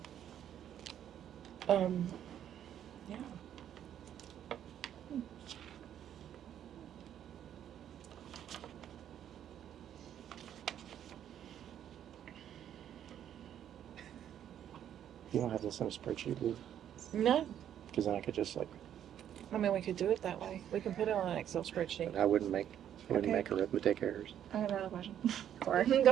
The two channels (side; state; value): left; quieter; 10.1 dB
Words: You don't have this in a spreadsheet, do you? No, Because then I could just like, I mean we could do it that way. We can put it on an Excel spreadsheet. I wouldn't make Okay. arithmetic errors. I have another question. Go